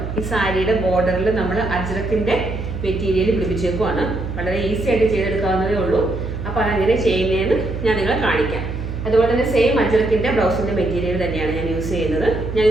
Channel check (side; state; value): right; noise; hum, 6 dB below the sound